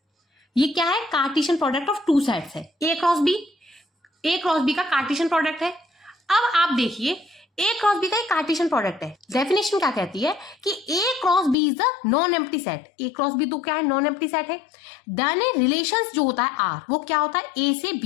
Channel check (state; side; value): drops out; right; at 11.6 s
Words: ये क्या है? Cartesian product of two sets है। ए क्रॉस बी का कार्टेशियन प्रोडक्ट है। अब आप देखिए ए क्रॉस बी का एक कार्टेशियन प्रोडक्ट है। डेफिनेशन क्या कहती है कि A cross B is the non empty set. A cross B तो क्या है? नॉन एम्प्टी सेट है। देन ए रिलेशंस जो होता है आर, वो क्या होता है? ए से